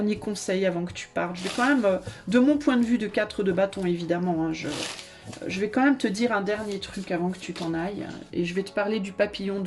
conseil avant que tu partes. Je vais quand même, de mon point de vue de 4 de bâton évidemment, hein, je vais quand même te dire un dernier truc avant que tu t'en ailles. Et je vais te parler du papillon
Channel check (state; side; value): identical; both; correlation 1.00